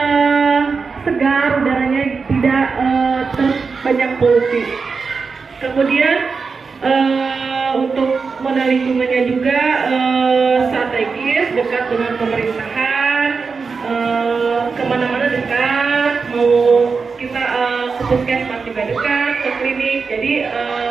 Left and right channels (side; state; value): left; quieter; 4.9 dB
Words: segar udaranya, tidak banyak polusi. Kemudian untuk modal lingkungannya juga strategis, dekat dengan pemerintahan, kemana-mana dekat, mau kita ke puskesmas juga dekat, ke klinik, jadi